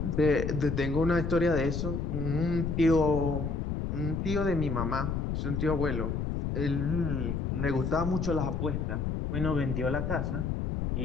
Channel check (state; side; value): noise; left; rumble, 1 dB below the sound